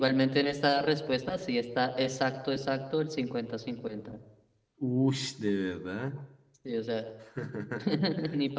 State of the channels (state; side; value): identical; both; correlation 1.00